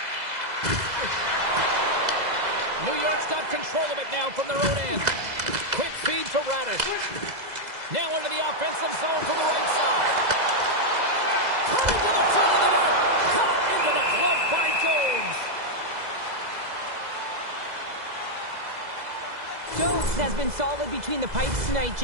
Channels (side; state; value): left; late; 2.0 ms